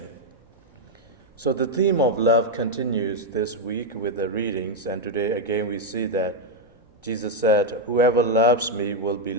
So the theme of love continues this week with the readings, and today again we see that Jesus said, "Whoever loves me will be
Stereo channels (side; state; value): both; normal; correlation 0.00